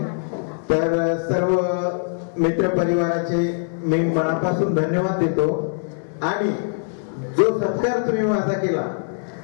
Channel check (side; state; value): right; silent; 64 dB below the other